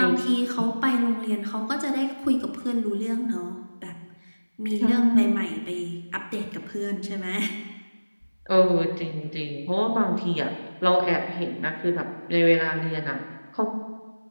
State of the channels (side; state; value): both; inverted; correlation -1.00